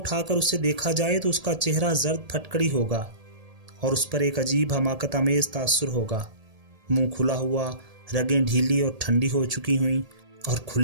کر اسے دیکھا جائے تو اس کا چہرہ زرد پھٹکڑی ہوگا اور اس پر ایک عجیب حماقت آمیز تاثر ہوگا۔ منہ کھلا ہوا، رگیں ڈھیلی اور ٹھنڈی ہو چکی ہوئیں، اور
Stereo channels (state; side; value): late; left; 1.8 ms